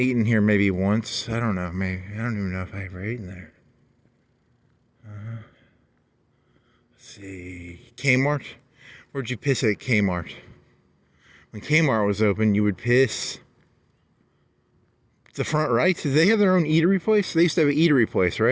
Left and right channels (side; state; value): both; identical; correlation 1.00